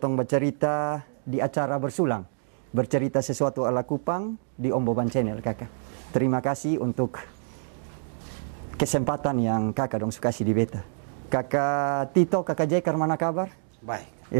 bercerita di acara bersulang. Bercerita sesuatu ala Kupang di Om Boban Channel kakak. Terima kasih untuk kesempatan yang kakak dong suka kasih di beta. Kakak Tito, kakak Jekar mana kabar? Baik.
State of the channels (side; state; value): left; silent; digital silence